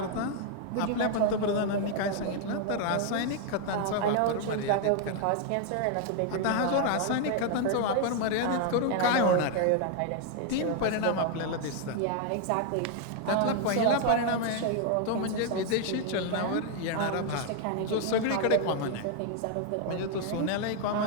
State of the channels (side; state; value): both; different; correlation 0.00